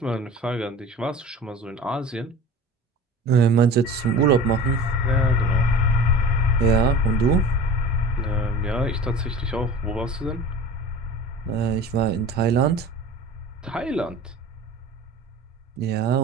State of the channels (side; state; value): both; normal; correlation 0.38